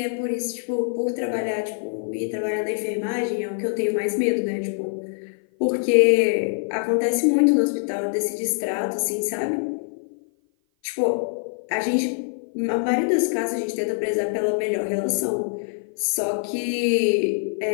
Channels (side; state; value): right; silent; 56 dB below the other